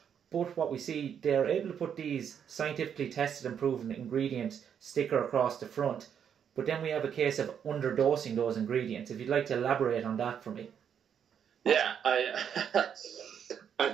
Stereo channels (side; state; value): left; quieter; 8.2 dB